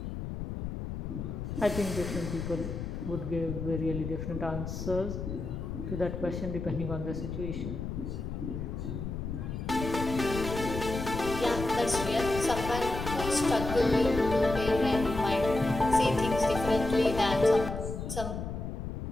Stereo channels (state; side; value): noise; left; rumble, 5 dB below the sound